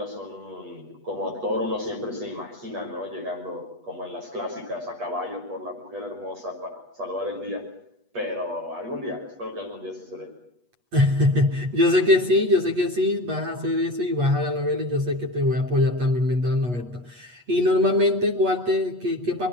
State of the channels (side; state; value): left; late; 8.3 ms